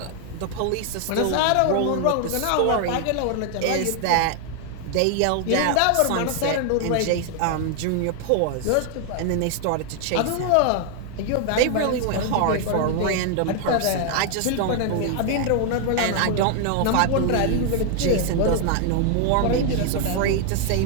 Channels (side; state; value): both; different; correlation 0.00